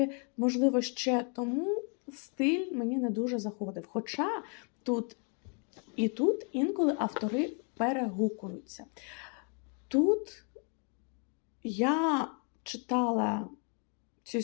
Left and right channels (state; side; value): quieter; right; 39.0 dB